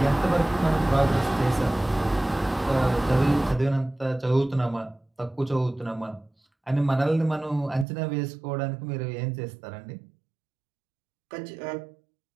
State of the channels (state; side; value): drops out; left; at 7.9 s